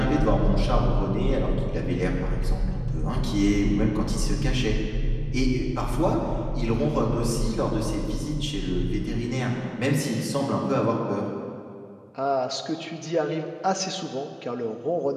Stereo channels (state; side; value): identical; both; correlation 1.00